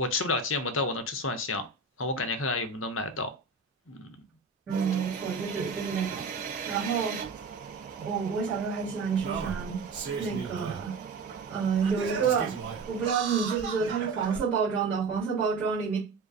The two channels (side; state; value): left; quieter; 4.0 dB